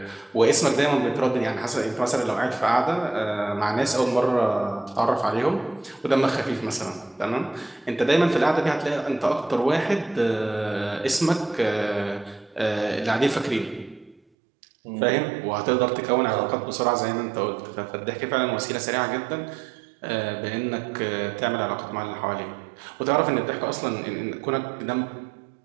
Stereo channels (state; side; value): drops out; left; at 14.2 s